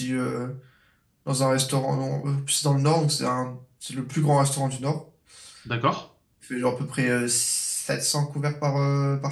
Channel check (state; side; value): identical; both; correlation 1.00